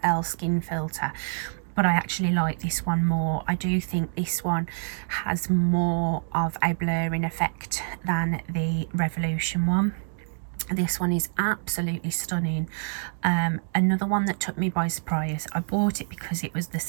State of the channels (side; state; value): left; silent; digital silence